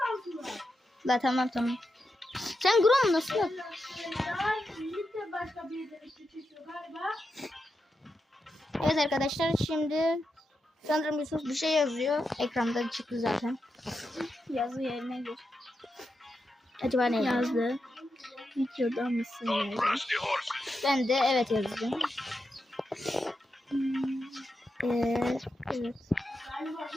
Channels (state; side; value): normal; both; correlation 0.87